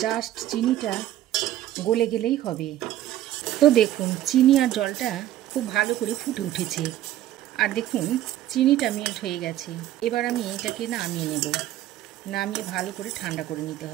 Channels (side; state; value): left; quieter; 13.3 dB